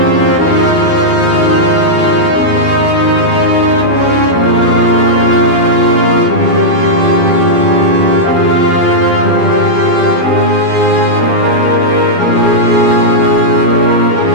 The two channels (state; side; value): late; right; 12 ms